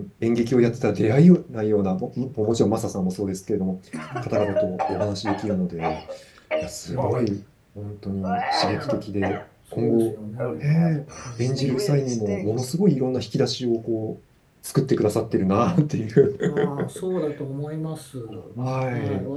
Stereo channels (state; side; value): identical; both; correlation 1.00